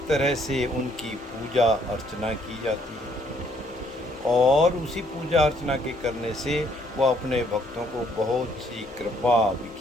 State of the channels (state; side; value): normal; both; correlation 0.67